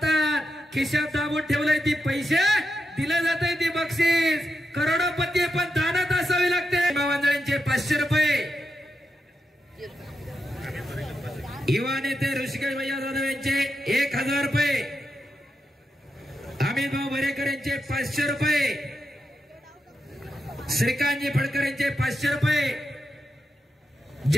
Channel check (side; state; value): both; normal; correlation 0.86